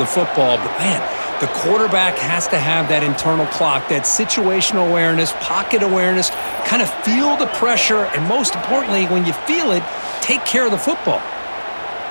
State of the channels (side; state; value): both; inverted; correlation -1.00